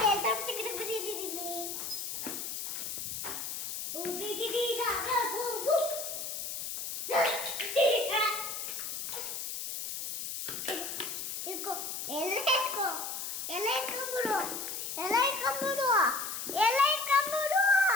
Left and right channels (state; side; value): noise; left; hiss, 5 dB below the sound